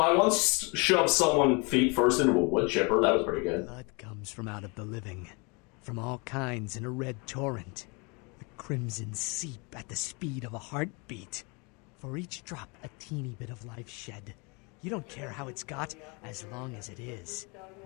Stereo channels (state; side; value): quieter; right; 30.4 dB